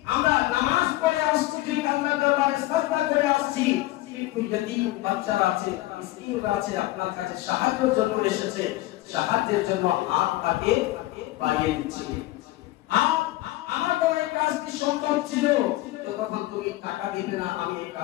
আমরা নামাজ পড়ে আসছি, ঠিক আল্লাহর দরবারে সাজদা করে আসছি, কিন্তু यतीम বাচ্চারা আছে, মিসকিনরা আছে, আপনার কাছে সাহায্যের জন্য এসেছে, সাহায্যের জন্য হাত পাতে বাড়িয়ে দিচ্ছি। আমার বড় এই কাজটি সম্ভব ছিল তো তখন তুমি টাকা দিবে না, আমি এই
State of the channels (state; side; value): quieter; right; 17.5 dB